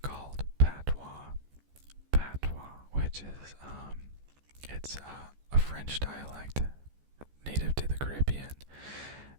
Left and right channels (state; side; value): late; left; 14 ms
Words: patois, which is, it's a French dialect native to the Caribbean